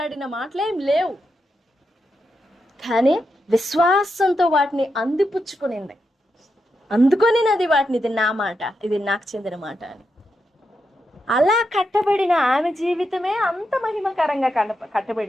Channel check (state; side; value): normal; both; correlation 0.85